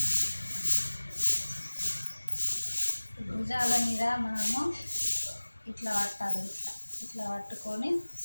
భుజాల మీద మనము ఇట్లా పట్టాలి, ఇట్లా పట్టుకొని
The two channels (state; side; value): inverted; both; correlation -1.00